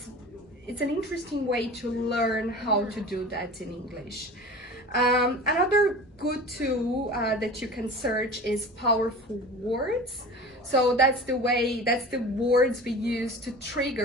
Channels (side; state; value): both; normal; correlation 0.37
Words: an interesting way to learn how to do that in English. Another good tool that you can search is powerful words. So that's the words we use to